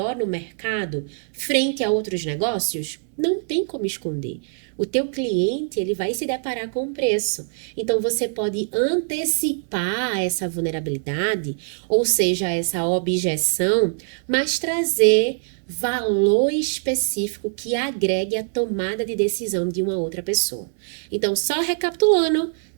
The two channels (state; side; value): silent; left; 61 dB below the other